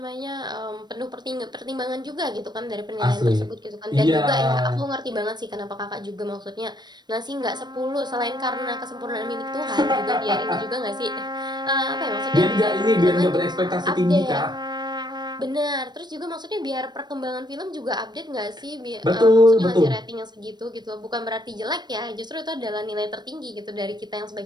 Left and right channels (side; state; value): left; late; 0.21 ms